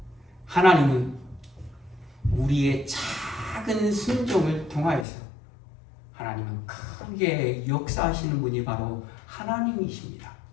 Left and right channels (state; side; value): drops out; right; at 5.1 s